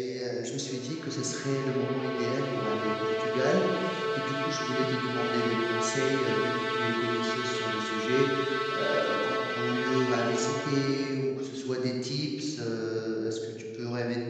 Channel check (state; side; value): identical; both; correlation 1.00